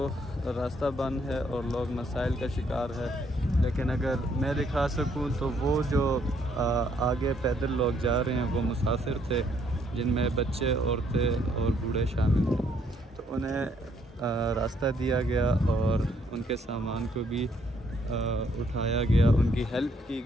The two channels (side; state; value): both; normal; correlation 0.69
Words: रास्ता बंद है और लोग मसाइल का शिकार है, लेकिन अगर मैं दिखा सकूं तो वो जो आगे पैदल लोग जा रहे हैं वो मुसाफिर थे, जिनमें बच्चे, औरतें और बूढ़े शामिल थे। तो उन्हें रास्ता दिया गया और उनके सामान को भी उठाया गया, उनकी हेल्प की